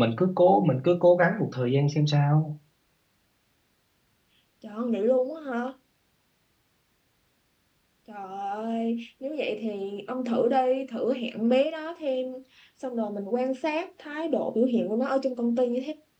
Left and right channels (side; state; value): both; identical; correlation 1.00